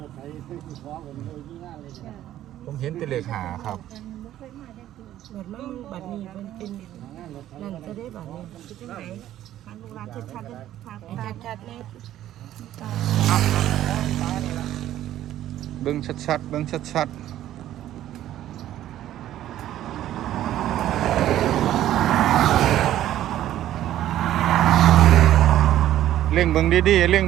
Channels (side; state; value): left; quieter; 12.7 dB